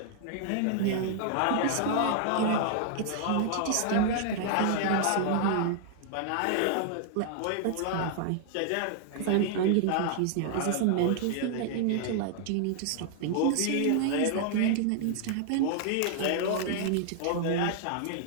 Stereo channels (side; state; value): both; different; correlation -0.01